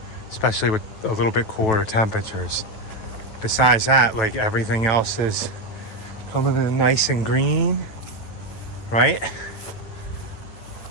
especially with a little bit cooler temperatures. Besides that, like, everything else is coming in nice and green, right?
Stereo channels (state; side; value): late; right; 9.0 ms